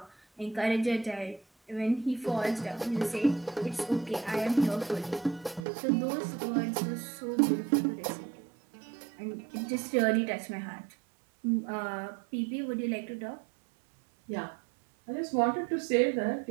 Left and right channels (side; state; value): left; drops out; at 5.6 s